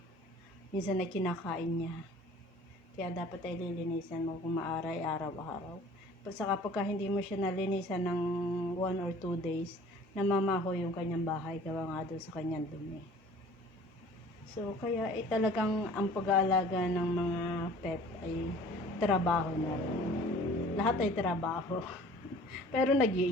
minsan na kinakain niya. Kaya dapat ay lilinisan mo kung maaray araw-araw. Saka pagka hindi mo siya nalinisan ng 1 or 2 days, namamaho yung kanyang bahay gawa nga doon sa kanyang dumi. So, kaya talagang ang pag-aalaga ng mga pet ay trabaho na rin. Lahat ay trabaho. Pero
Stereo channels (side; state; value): both; normal; correlation 0.48